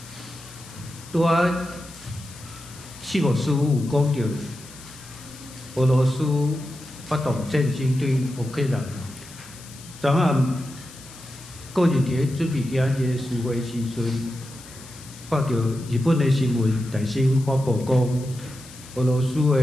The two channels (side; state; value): left; noise; hiss, 18 dB below the sound